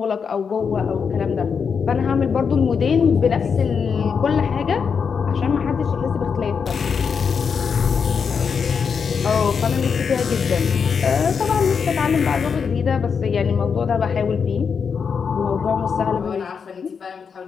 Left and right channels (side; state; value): right; quieter; 6.2 dB